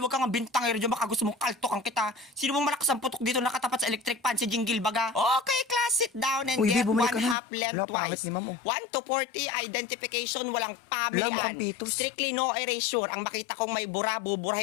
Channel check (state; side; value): drops out; right; at 7.4 s